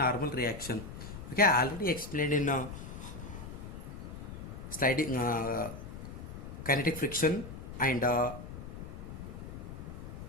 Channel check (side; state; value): left; noise; rumble, 10 dB below the sound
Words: reaction. Okay, I already explained in sliding kinetic friction and